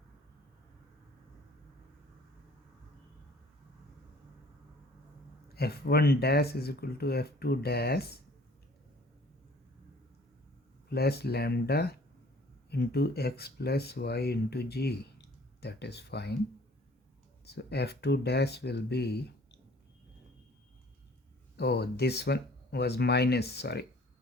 F1 dash is equal to F2 dash plus lambda into x plus y into g. That is fine. So F2 dash will be, oh, this one was minus, sorry,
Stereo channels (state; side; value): normal; both; correlation 0.53